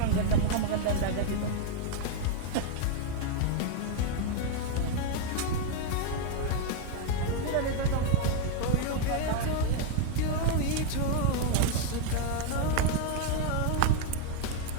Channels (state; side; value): different; both; correlation 0.01